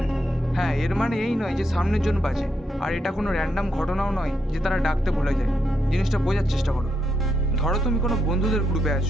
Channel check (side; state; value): both; normal; correlation 0.80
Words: হ্যাঁ, এর মানে এই নয় যে সামনের জন বাজে, আর এটা কোনো র্যান্ডাম ঘটনাও নয় যে তারা ডাকতে ভুলে যায়। জিনিসটা বোঝার চেষ্টা করো। ধরো তুমি কোনো বন্ধুদের গ্রুপে